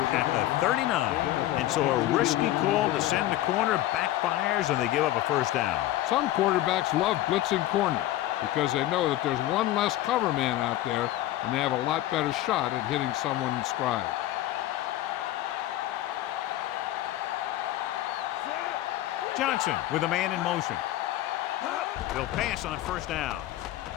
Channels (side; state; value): right; quieter; 14.7 dB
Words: at the 39. And so a risky call to send the corner backfires, and they give up a 1st down. Some quarterbacks love blitzing corner because they know that there's one less cover man out there, and they have a lot better shot at hitting someone in stride. Johnson with a man in motion. They'll pass on 1st down.